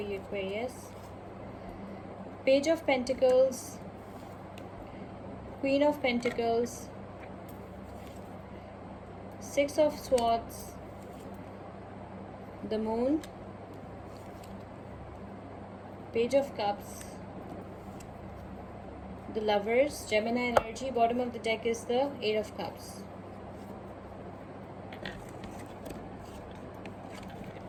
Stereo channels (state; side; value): identical; both; correlation 1.00